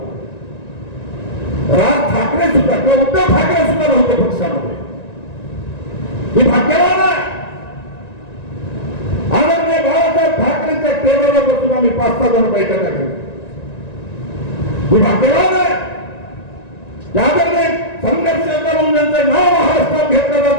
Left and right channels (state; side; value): late; right; 1.9 ms